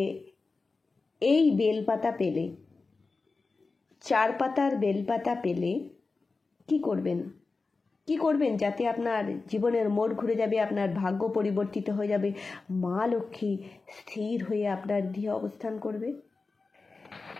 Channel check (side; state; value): right; quieter; 4.0 dB